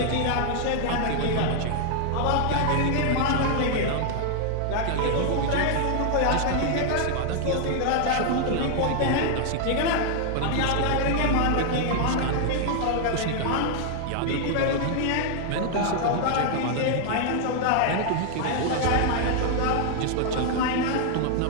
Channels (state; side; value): different; both; correlation 0.00